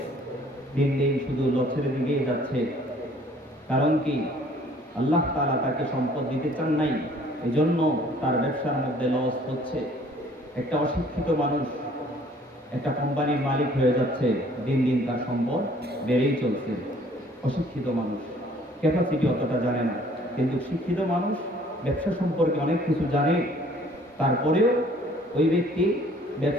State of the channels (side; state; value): both; normal; correlation 0.57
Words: দিন দিন শুধু লসের দিকেই যাচ্ছে। কারণ কি? আল্লাহ তাআলা তাকে সম্পদ দিতে চান নাই, এজন্য তার ব্যবসার মধ্যে লস হচ্ছে। একটা অশিক্ষিত মানুষ একটা কোম্পানির মালিক হয়ে যাচ্ছে, দিন দিন তার সম্পদ বেড়েই চলছে। অশিক্ষিত মানুষ ক্যাপাসিটি অতটা জানে না, কিন্তু শিক্ষিত মানুষ ব্যবসা সম্পর্কে অনেক কিছু জানে, তারপরেও ওই ব্যক্তি